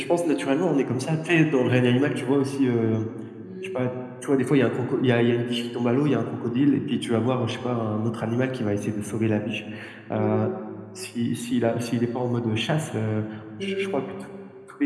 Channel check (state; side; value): identical; both; correlation 1.00